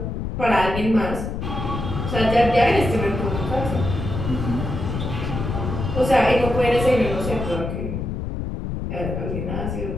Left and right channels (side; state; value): left; noise; rumble, 4 dB below the sound